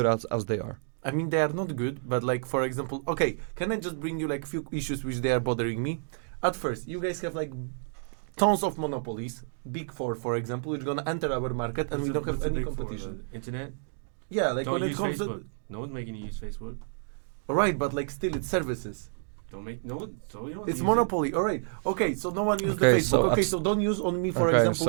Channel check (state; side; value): silent; left; digital silence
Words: as they are. I mean they are not good, but like for example, okay, can I just bring you like few issues which they are bothering me? At first, you guys have like tons of monopolies, big four, for example, which gonna enter our market, and we don't have any competition. Internet. Yeah, like Don't when it use comes Facebook. to No one's making you use Facebook. right, but like still it's services. Don't make no one. So you don't. It's use monopoly. All right. Okay, so no one used Okay, the Facebook. so Okay, so don't use on me, for Okay, example,